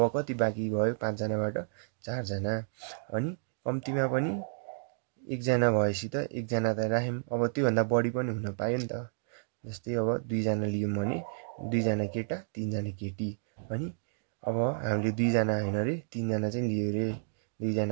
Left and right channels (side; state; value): left; silent; digital silence